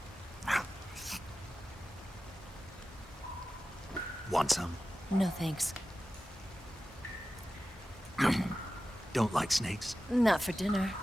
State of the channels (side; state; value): both; normal; correlation 0.94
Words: Want some? No thanks. Don't like snakes? Not for dinner.